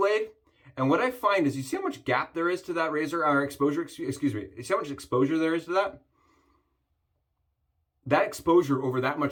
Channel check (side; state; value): both; identical; correlation 1.00